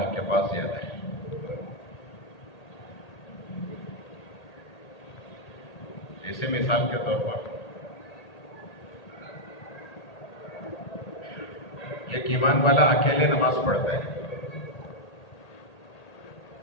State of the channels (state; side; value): late; right; 1.8 ms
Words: کے پاس زیادہ ہے۔ جیسے مثال کے طور پر ایک ایمان والا اکیلے نماز پڑھتا ہے